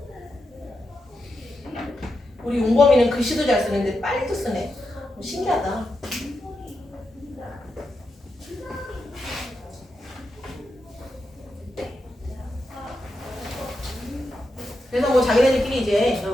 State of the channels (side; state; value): both; normal; correlation 0.87